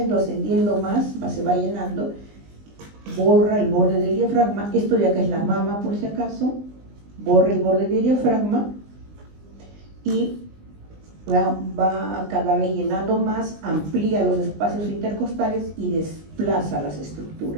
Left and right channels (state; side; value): late; left; 20 ms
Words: más, se va llenando. Borra el borde del diafragma. Esto de acá es la mama, por si acaso. Borra el borde del diafragma y va cada vez llenando más, amplía los espacios intercostales y desplaza las